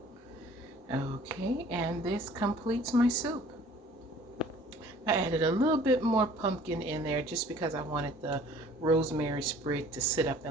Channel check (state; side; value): normal; both; correlation 0.51